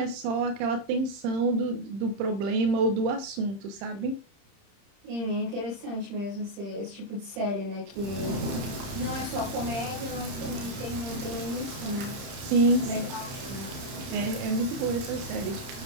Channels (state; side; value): late; left; 30 ms